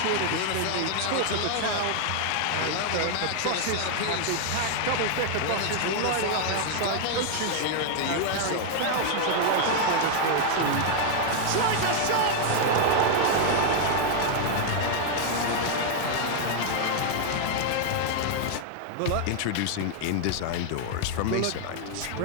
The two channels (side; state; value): both; different; correlation 0.00